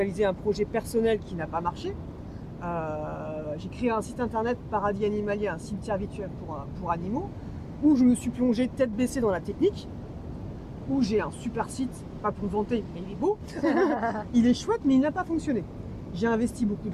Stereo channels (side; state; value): both; identical; correlation 1.00